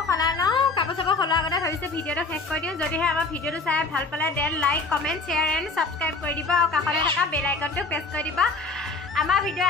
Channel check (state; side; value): quieter; right; 3.7 dB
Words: সলাই লওঁ কাপোৰ চাপোৰ সলোৱাৰ আগতে ভাবিছোঁ ভিডিঅ'টো শেষ কৰি দিওঁ যদিহে আমাৰ ভিডিঅ'টো চাই ভাল পালে then like comment share and subscribe কৰি দিব আৰু কাষতে থকা বেল আইকনটো প্ৰেছ কৰি দিব আমাৰ